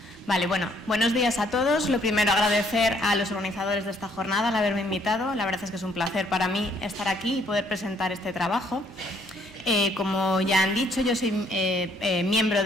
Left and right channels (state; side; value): normal; both; correlation 0.66